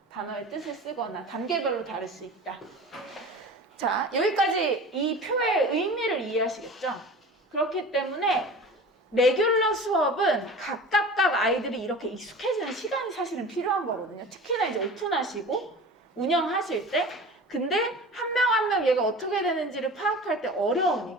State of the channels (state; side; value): normal; both; correlation 0.37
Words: 단어의 뜻을 쓰거나 단계별로 다를 수 있다. 자, 여기까지 이 표의 의미를 이해하시겠죠? 그렇기 때문에 레귤러 수업은 각각 아이들이 이렇게 익숙해지는 시간이 사실은 필요한 거거든요. 특히나 이제 오픈하시고 운영하실 때. 근데 한 명 한 명 얘가 어떻게 되는지를 파악할 때